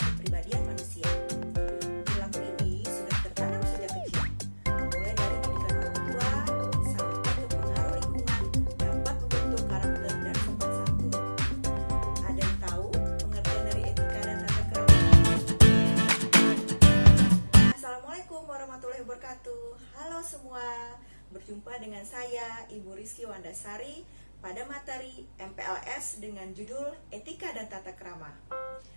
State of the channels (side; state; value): both; inverted; correlation -1.00